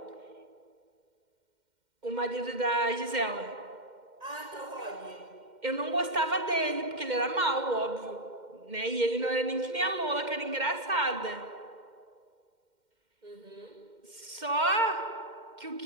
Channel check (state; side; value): late; left; 2.1 ms